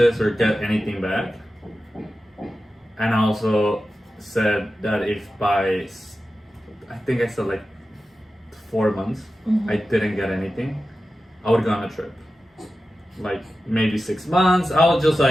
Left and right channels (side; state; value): both; normal; correlation 0.93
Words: or get anything back. And I also said that if by, I think I said like 4 months, I didn't get anything, I would go on a trip. Like maybe 6 months, I was just